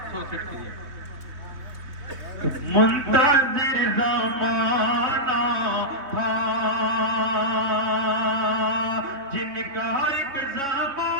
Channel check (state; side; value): late; left; 3.8 ms